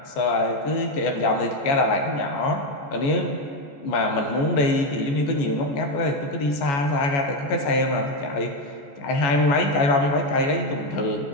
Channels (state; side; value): late; right; 14 ms